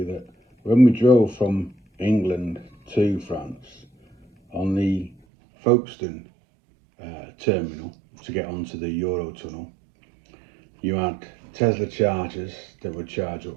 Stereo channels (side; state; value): left; drops out; at 5.2 s